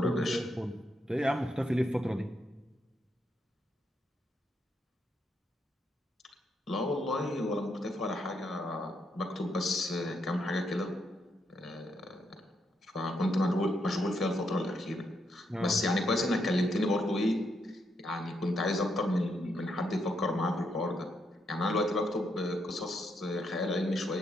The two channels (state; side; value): normal; both; correlation 0.78